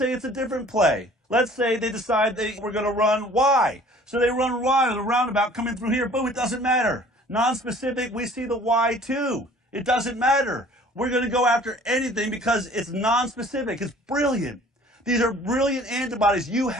it's a different play. Let's say they decide we're going to run Y. So they run Y with a roundabout coming through here, boom, it doesn't matter. Non-specific, we see the Y too. It doesn't matter. We're going to go after anything because it's non-specific. It's brilliant. These are brilliant antibodies you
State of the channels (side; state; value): both; normal; correlation 0.51